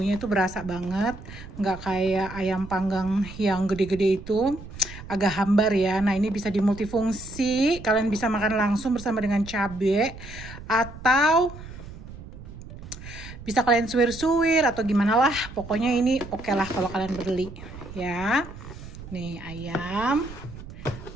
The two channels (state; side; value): noise; right; rumble, 14 dB below the sound